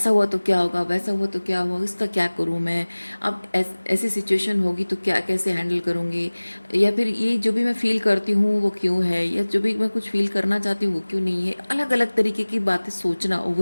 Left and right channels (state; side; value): inverted; both; correlation -1.00